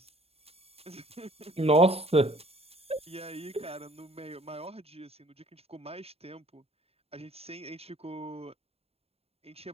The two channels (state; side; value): late; left; 0.29 ms